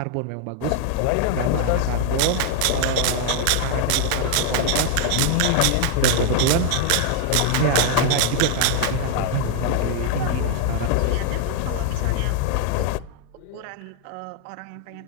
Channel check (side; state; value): both; different; correlation 0.00